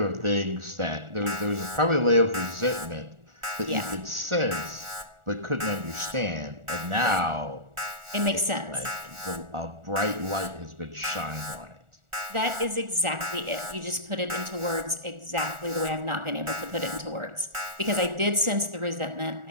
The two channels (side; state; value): left; late; 1.4 ms